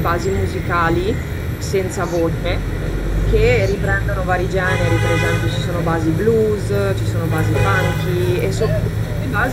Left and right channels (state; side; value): identical; both; correlation 1.00